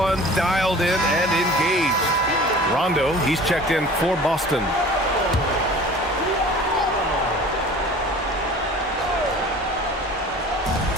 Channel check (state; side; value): normal; both; correlation 0.43